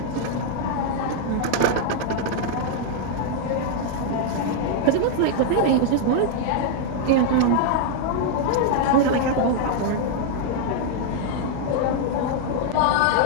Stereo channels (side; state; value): both; different; correlation 0.00